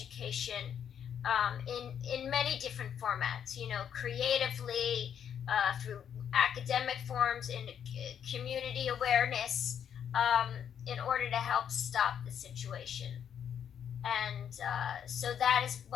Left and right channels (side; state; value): right; quieter; 8.6 dB